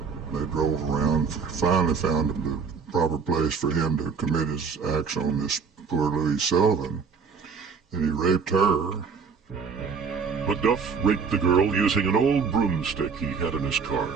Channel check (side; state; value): left; quieter; 5.7 dB